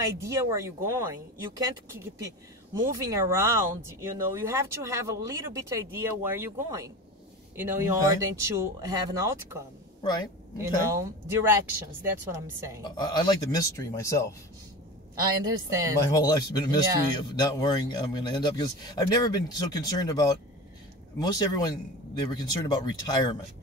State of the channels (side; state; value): both; normal; correlation 0.31